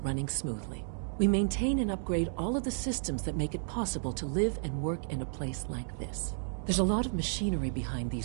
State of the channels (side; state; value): left; silent; digital silence